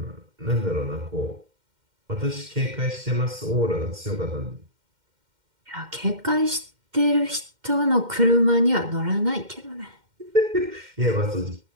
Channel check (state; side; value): late; left; 2.1 ms